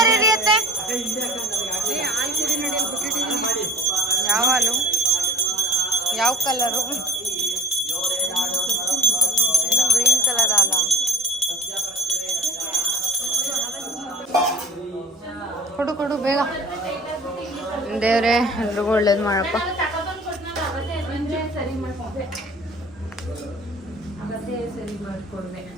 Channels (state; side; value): normal; both; correlation 0.42